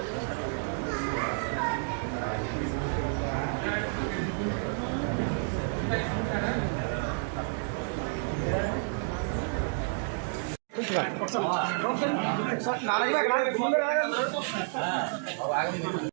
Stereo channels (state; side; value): silent; left; 58 dB below the other